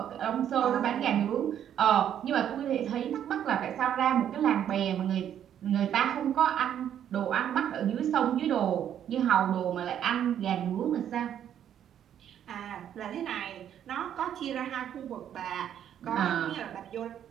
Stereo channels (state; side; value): quieter; left; 9.9 dB